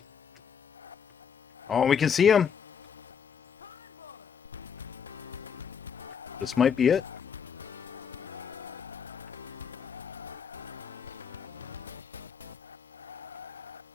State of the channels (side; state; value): right; quieter; 7.3 dB